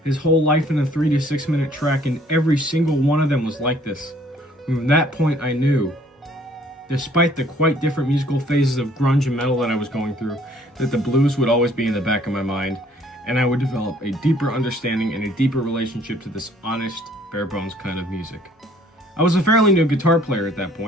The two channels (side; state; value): both; normal; correlation 0.59